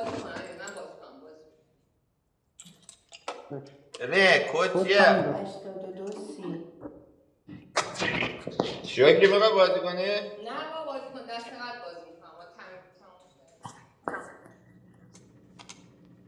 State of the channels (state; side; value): identical; both; correlation 1.00